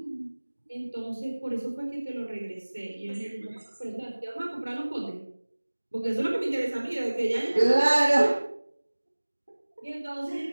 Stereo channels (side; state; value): both; inverted; correlation -1.00